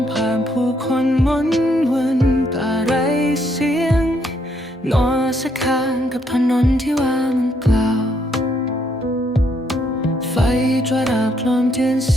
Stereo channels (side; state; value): both; normal; correlation 0.72